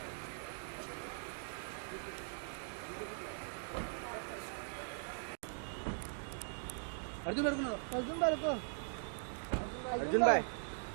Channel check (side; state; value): left; silent; digital silence